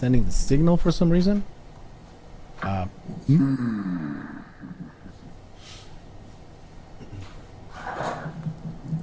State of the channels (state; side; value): identical; both; correlation 1.00